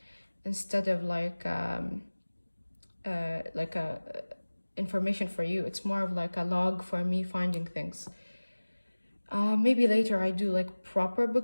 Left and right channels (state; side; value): inverted; both; correlation -1.00